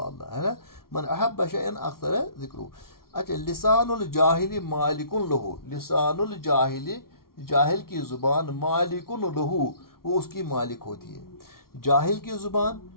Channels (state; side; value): late; right; 0.93 ms